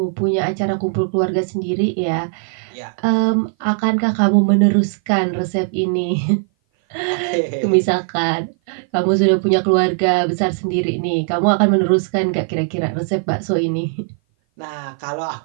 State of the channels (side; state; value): left; silent; 57 dB below the other